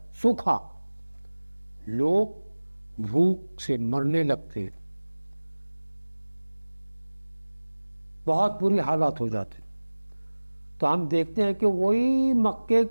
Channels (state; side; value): inverted; both; correlation -1.00